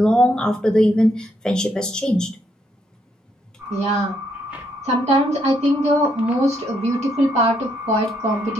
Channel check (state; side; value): normal; both; correlation 0.75